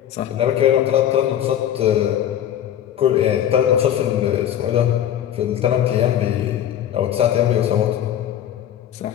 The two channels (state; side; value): quieter; right; 10.8 dB